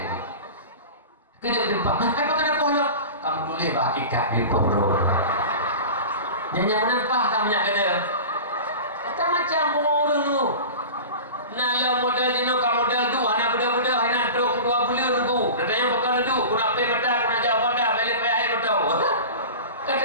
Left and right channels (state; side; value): inverted; both; correlation -0.33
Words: kena berjumpa kenapa pohon kamu boleh hakikat di pohon yang menempah tamanya kena kata macam orang tu nala modal jino ka modal tu anak budak-budak anak duk 2 bulan tu katanya bukan tu aku nak pay mata aku nak jawab anda balik pay air betul